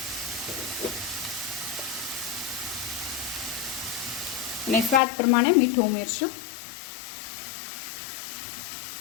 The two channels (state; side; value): drops out; right; at 5.0 s